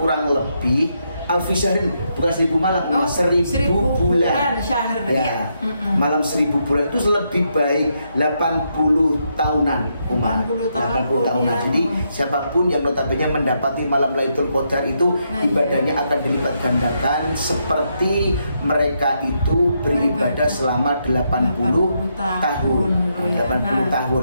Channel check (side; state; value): both; inverted; correlation -0.79